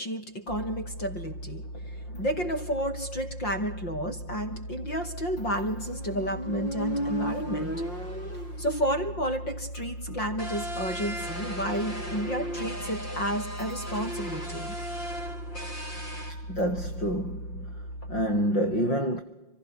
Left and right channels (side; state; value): right; late; 5.7 ms